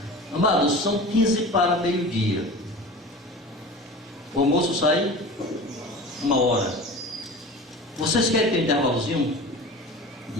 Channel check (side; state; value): both; normal; correlation 0.35